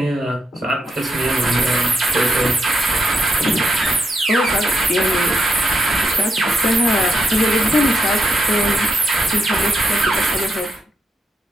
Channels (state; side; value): normal; both; correlation 0.80